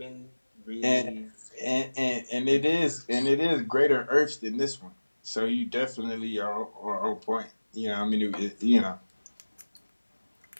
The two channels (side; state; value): both; inverted; correlation -1.00